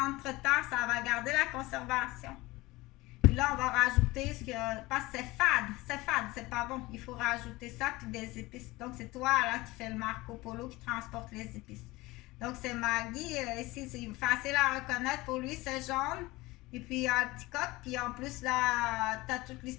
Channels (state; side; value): quieter; right; 20.7 dB